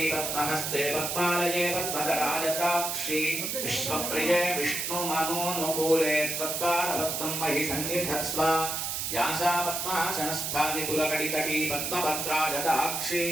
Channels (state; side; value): noise; right; hiss, 2 dB below the sound